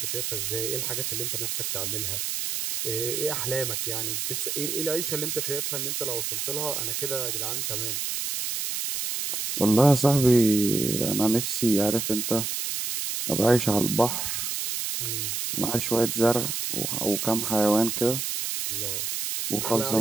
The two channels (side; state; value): right; noise; hiss, 2 dB below the sound